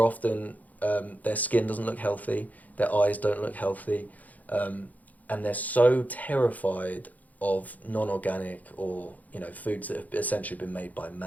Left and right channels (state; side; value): late; right; 0.078 ms